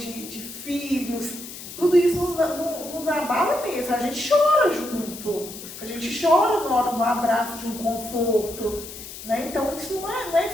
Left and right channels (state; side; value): noise; left; hiss, 12 dB below the sound